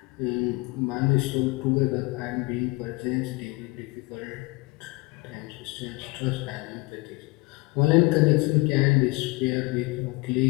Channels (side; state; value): right; quieter; 24.4 dB